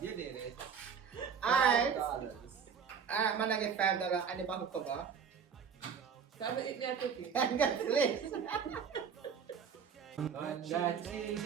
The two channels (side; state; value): left; quieter; 6.7 dB